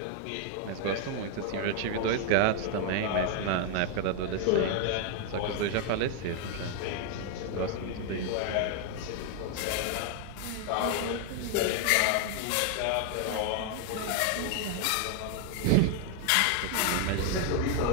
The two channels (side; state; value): both; different; correlation 0.00